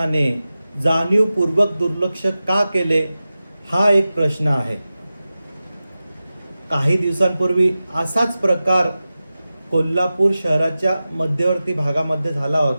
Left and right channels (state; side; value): inverted; both; correlation -0.95